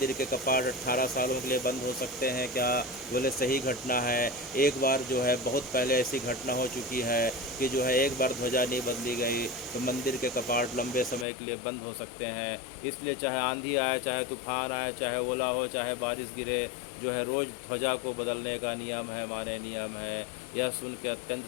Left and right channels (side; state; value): right; drops out; at 11.2 s